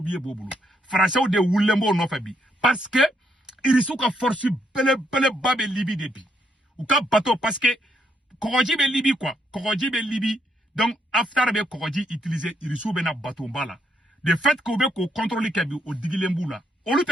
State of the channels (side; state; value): both; normal; correlation 0.75